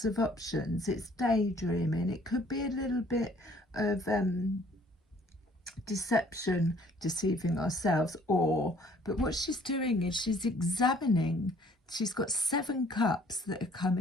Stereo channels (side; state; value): both; normal; correlation 0.58